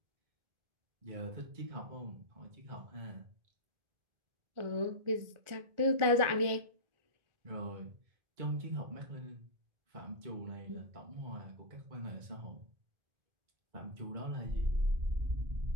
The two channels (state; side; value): late; left; 1.4 ms